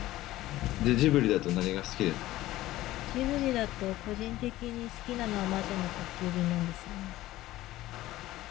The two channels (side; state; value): right; quieter; 16.2 dB